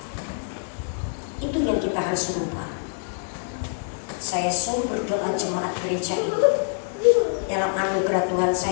Itu yang kita harus rubah. Saya sungguh berdoa jemaat gereja ini, dalam anugerah Tuhan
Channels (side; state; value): right; silent; 59 dB below the other